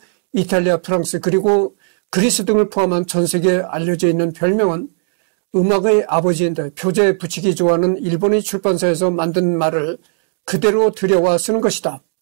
이탈리아, 프랑스 그리고 그리스 등을 포함한 전 세계에 알려져 있는 별명은 음악의 아버지인데 표제에 붙이기 좋아하는 일본의 출판사에서 만든 말을 그대로 들여와 쓰는 것이다.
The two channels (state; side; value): silent; left; digital silence